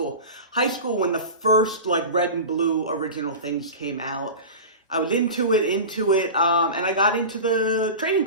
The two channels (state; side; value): inverted; both; correlation -0.30